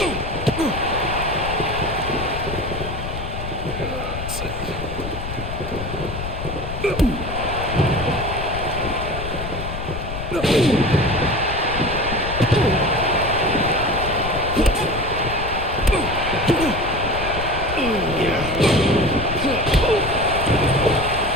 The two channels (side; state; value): left; noise; rumble, 7 dB below the sound